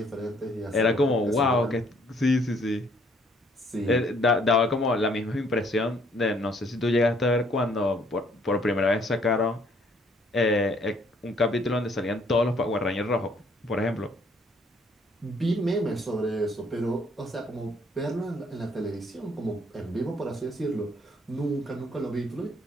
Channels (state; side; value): normal; both; correlation 0.64